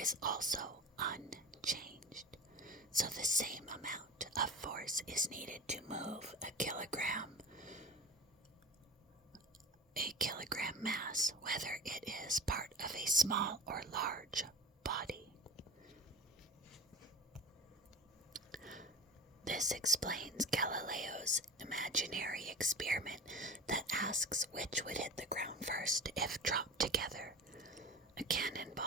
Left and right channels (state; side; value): normal; both; correlation 0.33